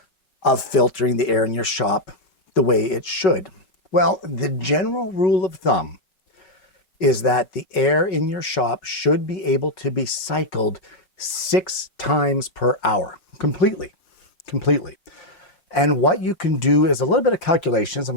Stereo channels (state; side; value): late; right; 5.4 ms